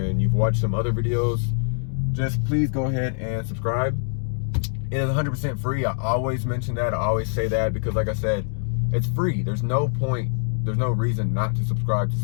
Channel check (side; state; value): right; silent; digital silence